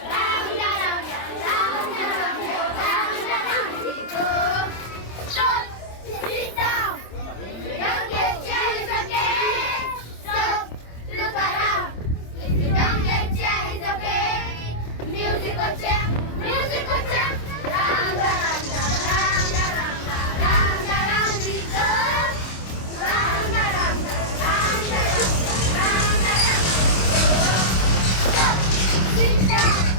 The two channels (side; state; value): right; late; 26 ms